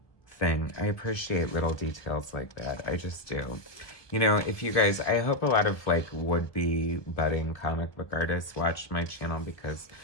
thing. I appreciate little details like that. I just do. You know, if you guys, I hope a lot of like would-be budding comic book artists watch my channel, because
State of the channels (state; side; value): late; right; 1.4 ms